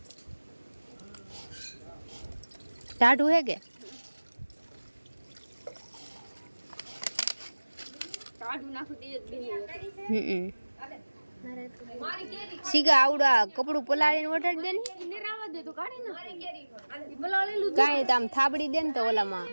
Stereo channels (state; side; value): inverted; both; correlation -1.00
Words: ટાઢું હે કે સીગા આવડા કપડું પલાળીને વટાડી દે ને કાંઈ તો આમ થાબડી દે ને તો ઓલામાં